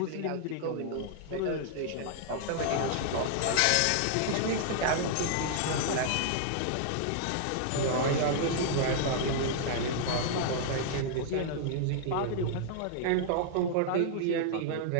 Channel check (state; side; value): different; both; correlation -0.01